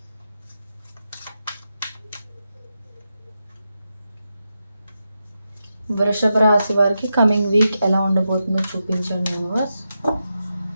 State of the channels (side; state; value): both; inverted; correlation -0.88